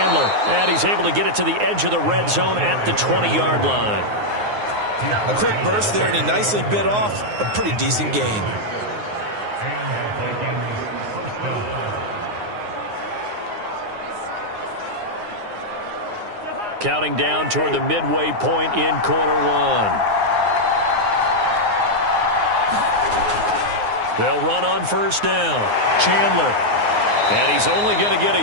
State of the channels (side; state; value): left; late; 9.6 ms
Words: and he's able to get it to the edge of the red zone at the 20-yard line. A quick burst there, and he nicely bit off a pretty decent gain. Counting down toward the midway point in quarter 1. They'll run on first down. Chandler. And he's only going to get